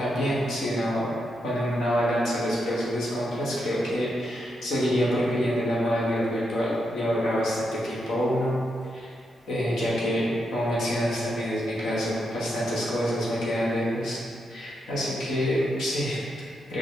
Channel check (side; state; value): both; normal; correlation 0.82